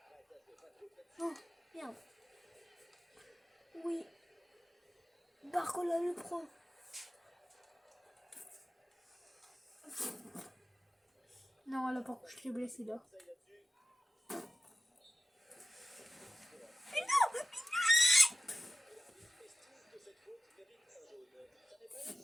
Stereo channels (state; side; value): normal; both; correlation 0.92